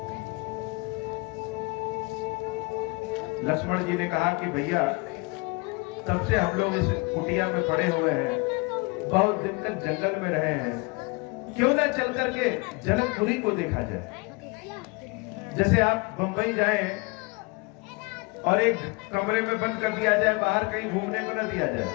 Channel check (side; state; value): right; quieter; 28.2 dB